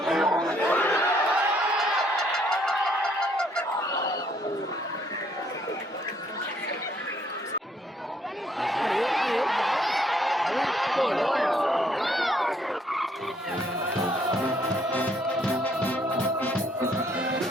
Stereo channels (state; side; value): normal; both; correlation 0.67